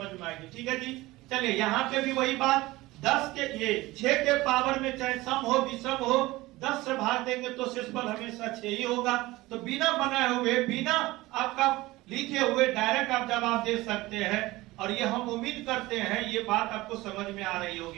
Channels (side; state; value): left; quieter; 19.3 dB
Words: में आएगी। ठीक है जी, चलिए यहाँ पे भी वही बात 10 के ये 6 के पावर में चाहे सम हो विषम हो 10 से भाग देंगे तो शेषफल हमेशा 6 ही होगा। तो बिना बनाए हुए, बिना आपका लिखे हुए डायरेक्ट आप जवाब दे सकते हैं, और ये हम उम्मीद करते हैं ये बात आपको समझ में आ रही